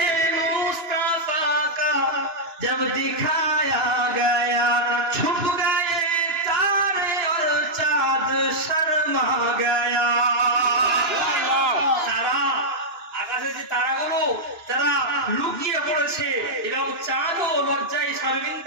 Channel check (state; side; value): late; left; 2.9 ms